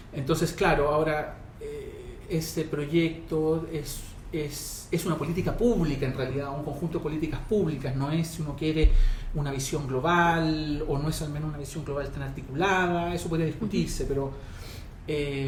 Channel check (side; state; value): both; identical; correlation 1.00